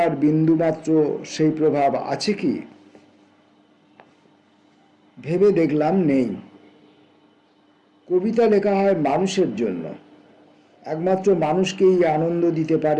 বিন্দুমাত্র সেই প্রভাব আছে কি? ভেবে দেখলাম নেই। কবিতা লেখা হয় মানুষের জন্য, একমাত্র মানুষকেই আনন্দ দিতে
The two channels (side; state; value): both; identical; correlation 1.00